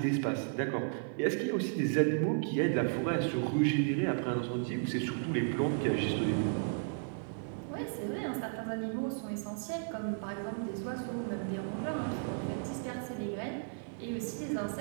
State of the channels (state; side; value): silent; left; 55 dB below the other